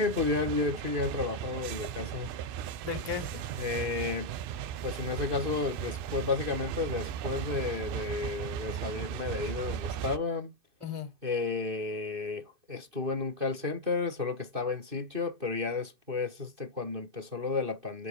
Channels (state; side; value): late; left; 2.6 ms